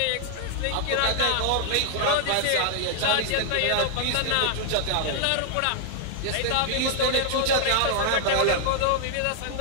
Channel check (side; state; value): both; different; correlation 0.00